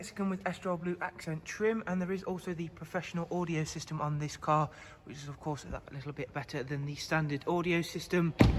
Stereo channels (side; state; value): both; identical; correlation 1.00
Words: with Estrel blue accent trim, and there is also the professional audio system on this car, which is of course a little bit better than the standard audio system.